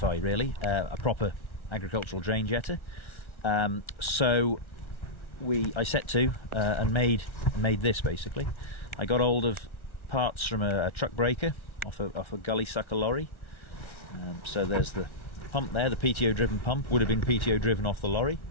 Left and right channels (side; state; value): right; late; 1.4 ms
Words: really a proper agricultural drain jetter, so I set to and made this basically. I got hold of parts from a truck breaker off a gully sucker lorry. So there's the pump there, the PTO driven pump, would have been PTO driven off the lorry.